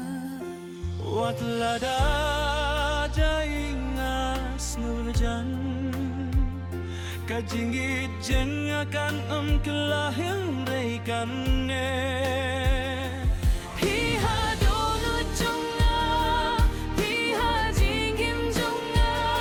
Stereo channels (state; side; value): identical; both; correlation 1.00